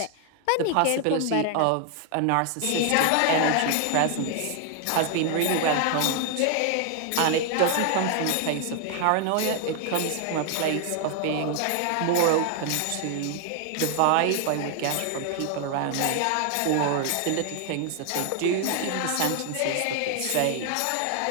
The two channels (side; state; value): both; different; correlation 0.00